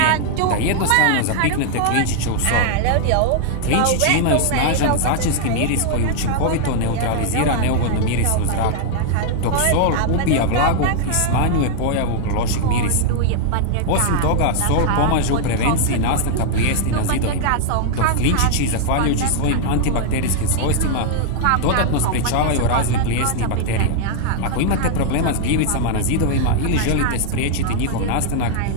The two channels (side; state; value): both; different; correlation 0.00